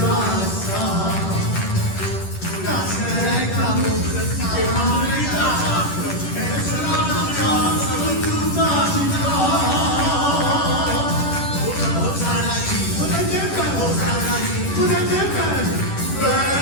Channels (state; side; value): late; right; 10 ms